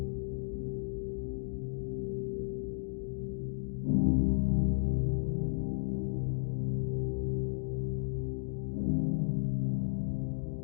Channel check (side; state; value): right; silent; digital silence